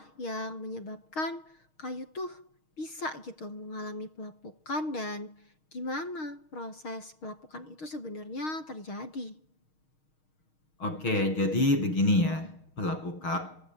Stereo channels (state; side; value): late; right; 6.4 ms